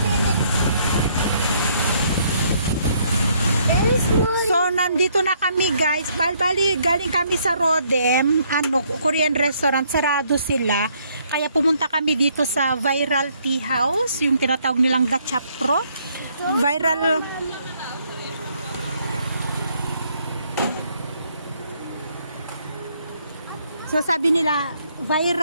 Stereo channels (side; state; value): both; inverted; correlation -0.68